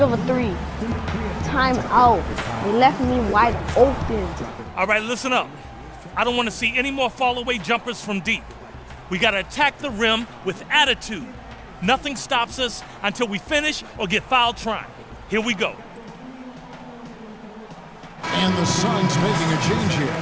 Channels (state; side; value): identical; both; correlation 1.00